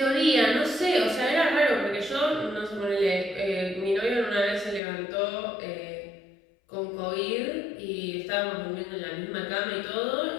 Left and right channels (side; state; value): right; drops out; at 4.8 s